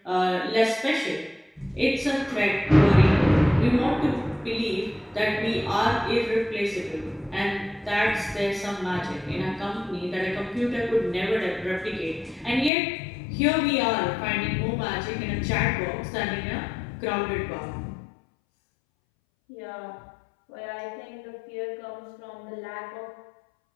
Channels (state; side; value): drops out; right; at 12.7 s